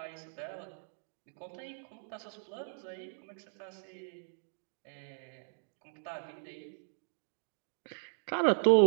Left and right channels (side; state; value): left; silent; digital silence